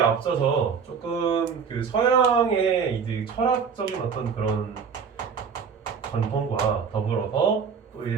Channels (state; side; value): quieter; left; 6.3 dB